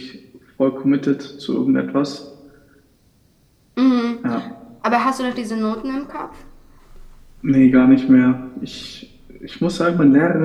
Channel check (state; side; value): identical; both; correlation 1.00